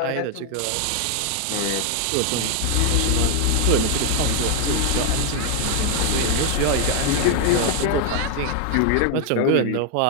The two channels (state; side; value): different; both; correlation 0.00